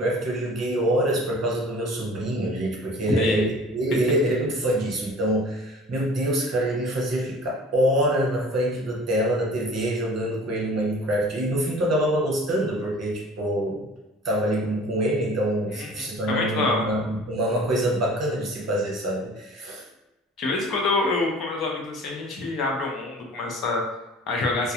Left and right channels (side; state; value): both; normal; correlation 0.46